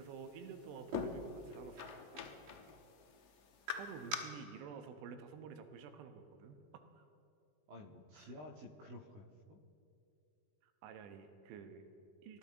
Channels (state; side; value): late; left; 19 ms